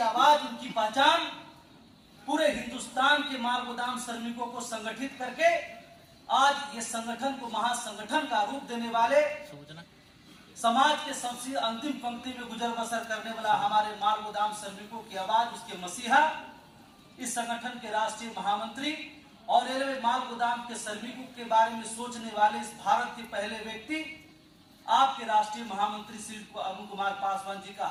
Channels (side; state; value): both; identical; correlation 1.00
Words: आवाज, उनकी पहचान पूरे हिंदुस्तान के माल गोदाम श्रमिकों को संगठित करके आज ये संगठन को महासंगठन का रूप देने वाले, समाज के सबसे अंतिम पंक्ति में गुजर बसर करने वाला हमारे माल गोदाम श्रमिकों की आवाज, उसके मसीहा, इस संगठन के राष्ट्रीय महामंत्री और रेलवे माल गोदाम के श्रमिकों के बारे में सोचने वाले इस भारत के पहले व्यक्ति, आपके राष्ट्रीय महामंत्री श्री अरुण कुमार पासवान जी का